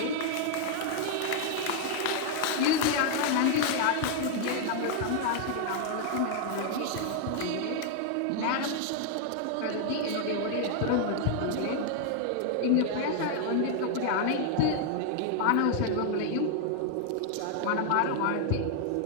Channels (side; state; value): both; different; correlation 0.00